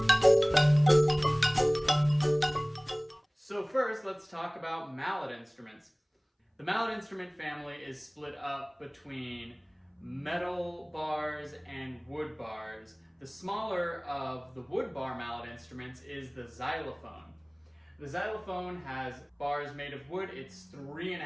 So first, let's talk about mallet instruments. The mallet instrument family is split up between metal bars and wood bars. The smaller of the wood bar mallet instruments is the xylophone. The xylophone has bars made of wood. It's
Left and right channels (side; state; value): both; identical; correlation 1.00